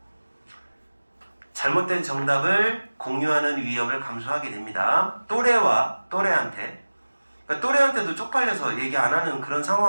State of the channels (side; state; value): both; inverted; correlation -1.00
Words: 잘못된 정답을 공유하는 위험을 감수하게 됩니다. 또래한테 그러니까 또래한테도 쪽팔려서 얘기 안 하는 그런